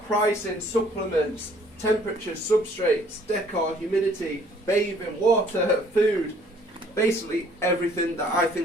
pricing, supplements, temperature, substrates, decor, humidity, bathing, water, food. Basically everything that I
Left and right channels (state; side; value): normal; both; correlation 0.59